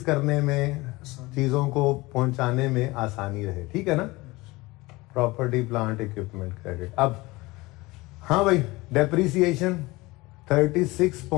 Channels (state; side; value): quieter; right; 21.7 dB